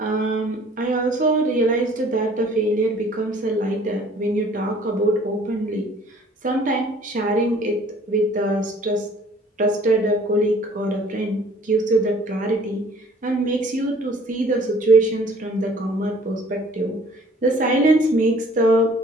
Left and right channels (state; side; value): normal; both; correlation 0.54